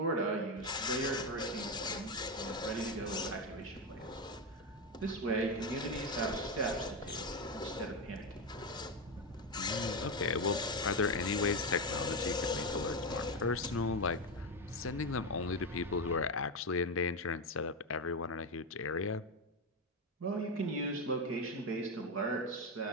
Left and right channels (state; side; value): normal; both; correlation 0.12